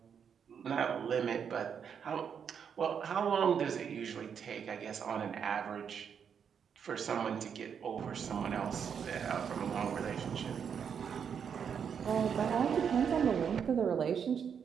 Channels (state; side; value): quieter; left; 7.4 dB